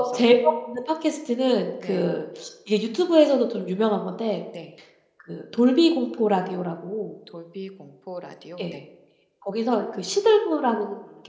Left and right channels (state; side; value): identical; both; correlation 1.00